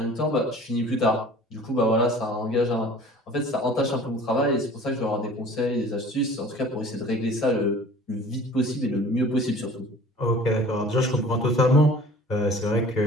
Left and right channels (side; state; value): both; normal; correlation 0.46